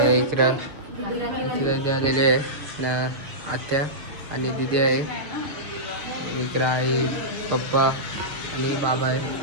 इकडं आलेले आहे ना, आत्या आणि दिदी आहे. इकडं आई, पप्पा आणि बाबा आहे.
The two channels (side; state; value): left; late; 6.6 ms